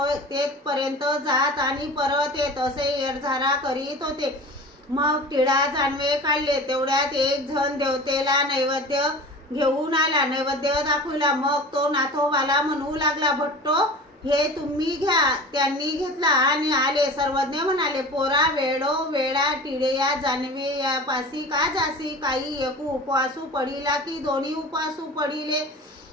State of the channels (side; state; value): both; normal; correlation 0.37